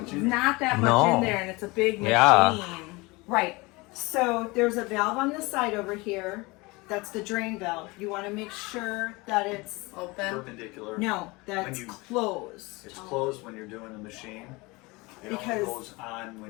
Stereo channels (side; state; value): right; quieter; 24.2 dB